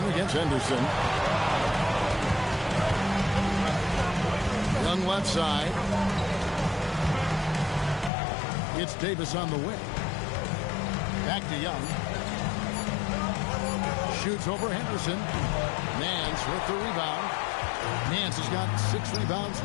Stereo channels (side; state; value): right; drops out; at 8.1 s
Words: against Henderson. Young left side. It's Davis on the wing. Back to Young. Shoots over Henderson. Nance with the rebound. Nance has got 6 rebounds